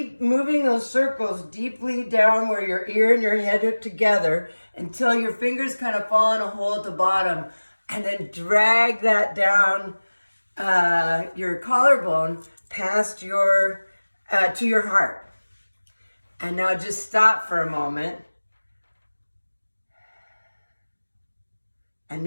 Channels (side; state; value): both; inverted; correlation -1.00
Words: moving those circles deeply down where your ear and your head are together until your fingers kind of fall in a hole at the bottom. And then drag that down your collarbone past your to your heart. And now just stop for a moment and